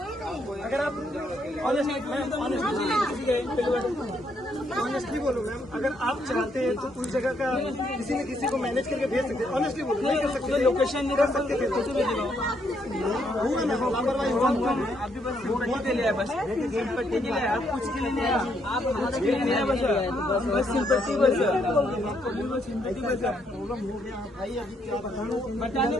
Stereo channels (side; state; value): both; normal; correlation 0.74